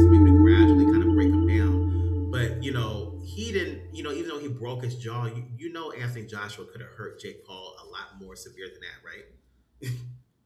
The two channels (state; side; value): identical; both; correlation 1.00